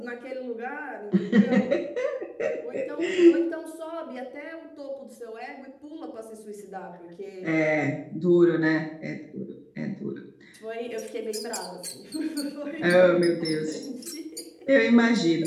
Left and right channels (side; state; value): both; identical; correlation 1.00